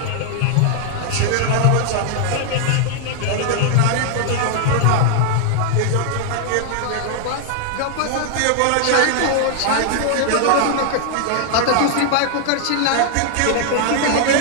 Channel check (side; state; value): both; different; correlation 0.00